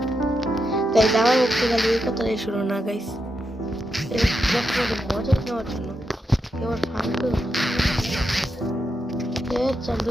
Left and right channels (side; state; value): both; normal; correlation 0.85